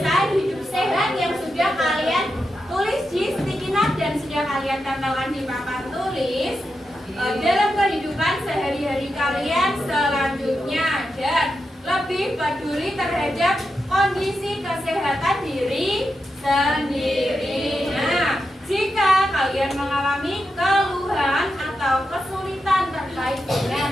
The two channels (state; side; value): normal; both; correlation 0.87